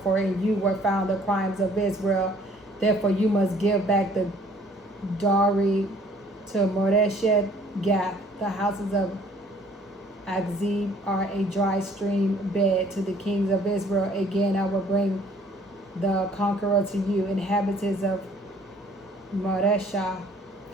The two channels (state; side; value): normal; both; correlation 0.57